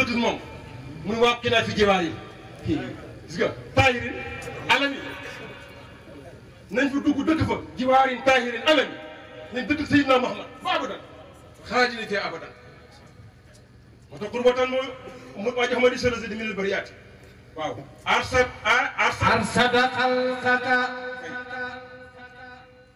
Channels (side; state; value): both; identical; correlation 1.00